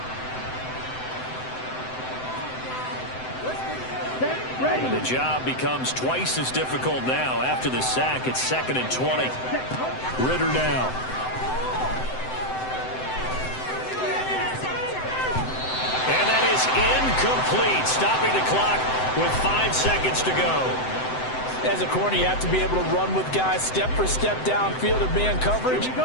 The job becomes twice as difficult now after the sack. It's 2nd and 20. Ritter now. And that is incomplete, stopping the clock with 5 seconds to go. As a corner, you have to be able to run with guys step for step downfield in man coverage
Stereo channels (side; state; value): right; late; 7.8 ms